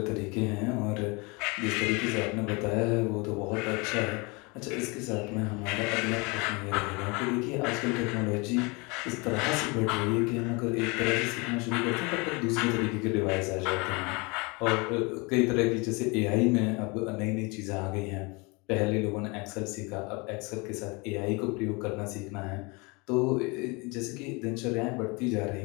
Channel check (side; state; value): right; quieter; 28.1 dB